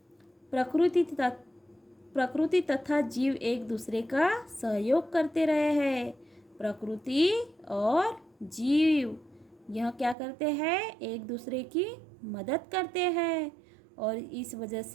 प्रकृति तथा जीव एक दूसरे का सहयोग करते रहे हैं। प्रकृति और जीव यह क्या करते हैं? एक दूसरे की मदद करते हैं और इस वजह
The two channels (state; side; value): drops out; left; at 10.2 s